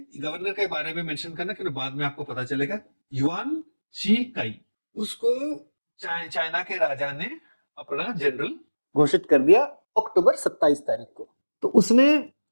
गवर्नर के बारे में मेंशन करना, क्योंकि बाद में आपको पता चलेगा। युआन शी काई, उसको चाइना के राजा ने अपना जनरल घोषित कर दिया अक्टूबर 27 तारीख को। तो उसने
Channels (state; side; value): inverted; both; correlation -1.00